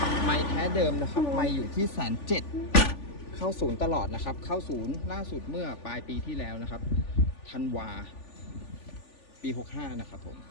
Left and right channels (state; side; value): late; right; 3.4 ms